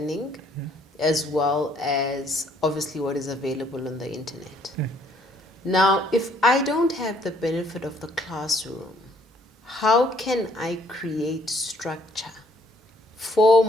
as well as obviously what is available on the internet. Now, if I don't have the benefit of the classroom, how can I create structure for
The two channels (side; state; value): both; normal; correlation 0.64